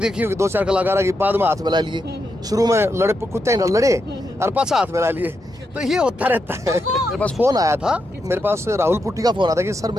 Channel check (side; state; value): both; normal; correlation 0.84